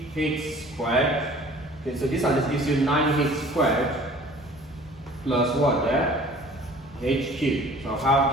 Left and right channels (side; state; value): both; normal; correlation 0.49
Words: squared. Okay, so this and this gives you 9h squared plus what there? H cubed. So I'll